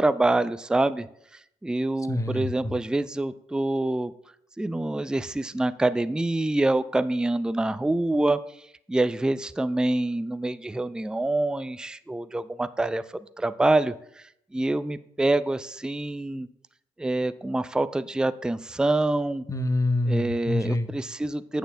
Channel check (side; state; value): both; normal; correlation 0.95